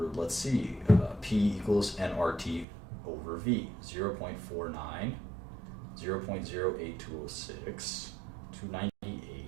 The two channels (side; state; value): left; drops out; at 2.7 s